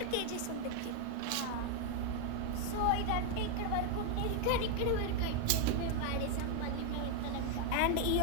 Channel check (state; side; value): different; both; correlation 0.00